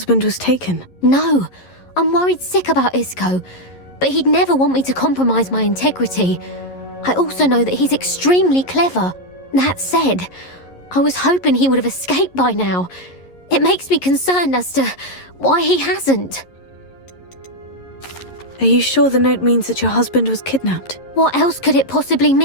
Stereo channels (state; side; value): late; right; 11 ms